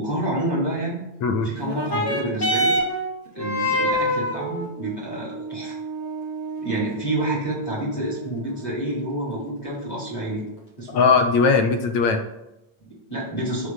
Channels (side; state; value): right; late; 9.0 ms